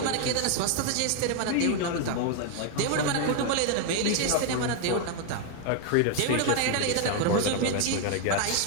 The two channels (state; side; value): different; both; correlation 0.01